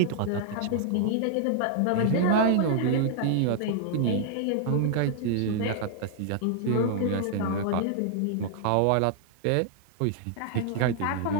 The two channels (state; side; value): different; both; correlation -0.01